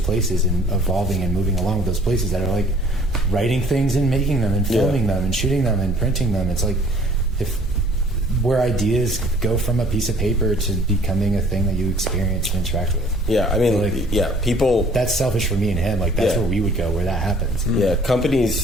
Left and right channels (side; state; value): both; normal; correlation 0.55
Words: and evolving and moving along with those places that are like writing things and making them and filming them and shooting them and printing them. It's like where ideas go from a piece of paper to becoming a thing that you experience and interact with. Yeah, I mean, people. That's selfish for me and him. Like that's where we would go, where that happens. Yeah,